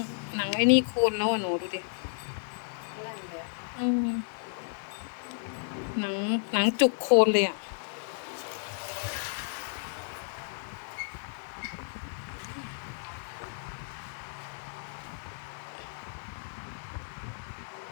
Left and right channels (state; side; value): silent; right; digital silence